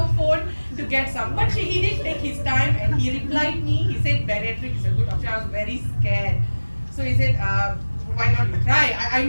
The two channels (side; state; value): both; inverted; correlation -1.00